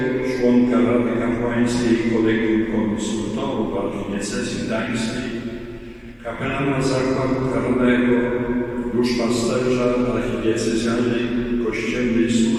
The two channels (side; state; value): both; identical; correlation 1.00